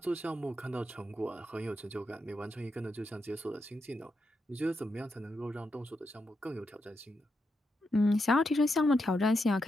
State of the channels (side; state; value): both; normal; correlation 0.84